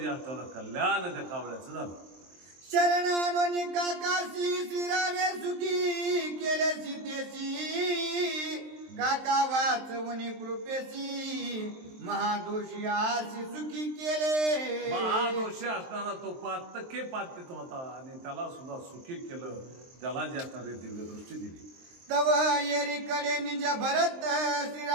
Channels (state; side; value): late; left; 23 ms